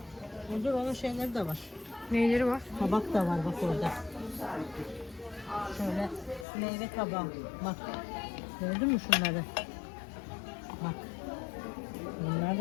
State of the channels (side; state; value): right; drops out; at 6.5 s